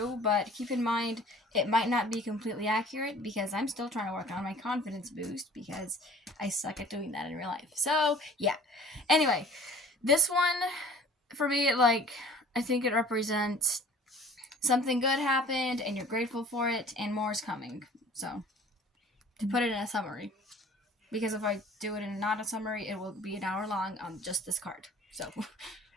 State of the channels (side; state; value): both; normal; correlation 0.48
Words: but keep in mind it might not be completely accurate because I'm still trying to work on my confidence boost because I suck at doing that in real life. So, yeah. Anyway, this one, for me, I think it represents something good happened and you're grateful for it and more is coming. So, to put it in a summary. Because if I do it in not a summary, it will be an hour long on just this card. So...